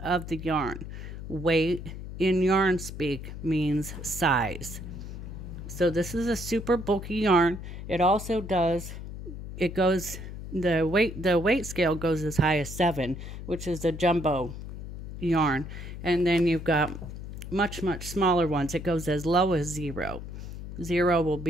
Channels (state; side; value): noise; left; hum, 9 dB below the sound